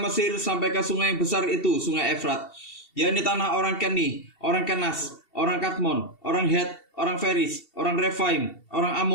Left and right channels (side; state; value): right; late; 2.7 ms